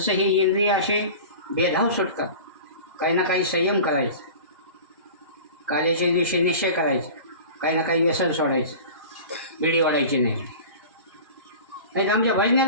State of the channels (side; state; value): both; inverted; correlation -0.37